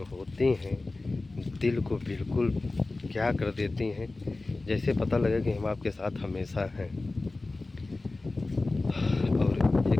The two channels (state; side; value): quieter; right; 3.2 dB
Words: होती हैं, दिल को बिल्कुल क्या कर देती हैं, जैसे पता लगे कि हम आपके साथ हमेशा हैं। और